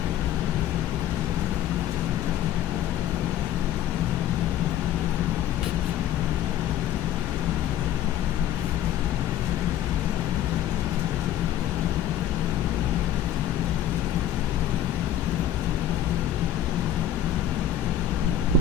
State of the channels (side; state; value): right; quieter; 10.6 dB